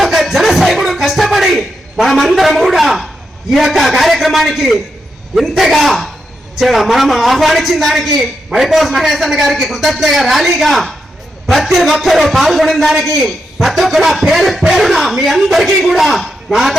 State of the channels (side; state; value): both; normal; correlation 0.84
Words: ఒక్క జన సైనికుడు కష్టపడి మనమందరం కూడా ఈ యొక్క కార్యక్రమానికి ఇంతగా మనం ఆహ్వానించిన దానికి మైపాస్ మహేష్ అన్న గారికి కృతజ్ఞతగా ర్యాలీగా ప్రతి ఒక్కరూ పాల్గొనిన దానికి ప్రతి ఒక్కరు పేరు పేరున మీ అందరికీ కూడా నా